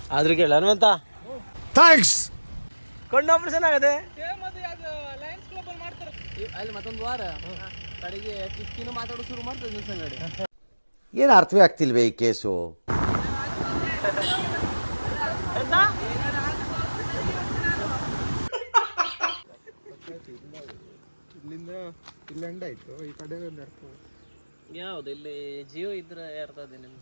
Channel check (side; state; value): both; inverted; correlation -1.00